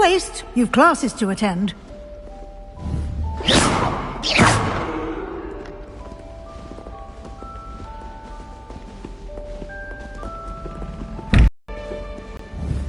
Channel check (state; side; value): identical; both; correlation 1.00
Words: You've classes to attend.